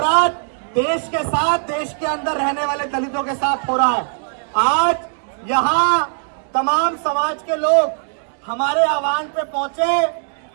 देश के साथ, देश के अंदर रहने वाले दलितों के साथ हो रहा है। आज यहाँ तमाम समाज के लोग हमारे आह्वान पे पहुंचे,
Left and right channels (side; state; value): left; silent; 61 dB below the other